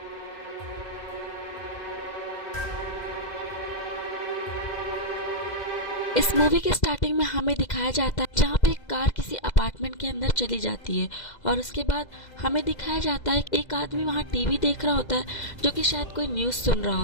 इस मूवी के स्टार्टिंग में हमें दिखाया जाता है जहाँ पे एक कार किसी अपार्टमेंट के अंदर चली जाती है और उसके बाद हमें दिखाया जाता है एक आदमी वहाँ टीवी देख रहा होता है जो कि शायद कोई न्यूज़ सुन रहा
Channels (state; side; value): late; right; 2.0 ms